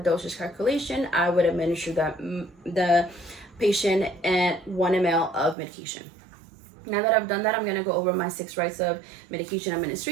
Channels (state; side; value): drops out; left; at 5.6 s